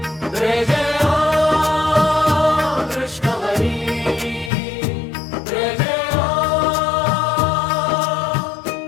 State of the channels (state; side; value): drops out; right; at 4.5 s